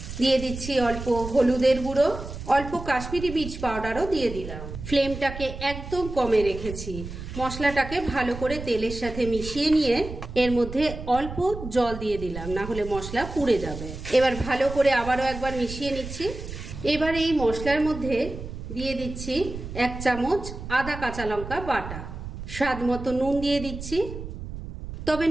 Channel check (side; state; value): right; noise; rumble, 10 dB below the sound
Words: দিয়ে দিচ্ছি অল্প হলুদের গুঁড়ো, অল্প কাশ্মীরি মির্চ পাউডারও দিয়ে দিলাম। ফ্লেমটাকে একদম কমে রেখেছি। মশলাটাকে ভালো করে তেলের সাথে মিশিয়ে নিয়ে এর মধ্যে অল্প জল দিয়ে দিলাম, না হলে মশলা পুড়ে যাবে। এবার ভালো করে আবারও একবার মিশিয়ে নিচ্ছি। এবার এই মশলার মধ্যে দিয়ে দিচ্ছি 1 চামচ আদা কাঁচা লঙ্কা বাটা, স্বাদ মতো নুন দিয়ে দিচ্ছি। তবে